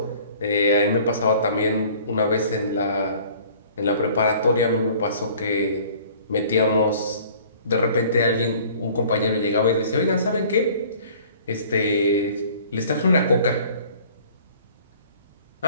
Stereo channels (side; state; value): both; inverted; correlation -0.51